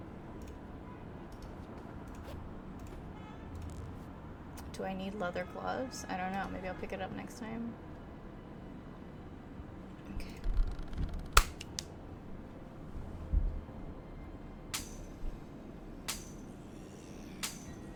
Do I need leather gloves? I don't know. Maybe I'll pick it up next time. Okay.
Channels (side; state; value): both; identical; correlation 1.00